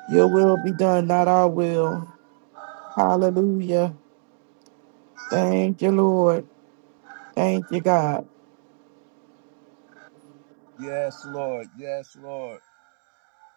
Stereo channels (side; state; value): left; silent; digital silence